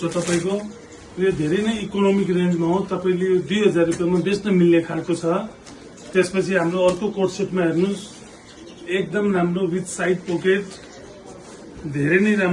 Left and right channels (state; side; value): identical; both; correlation 1.00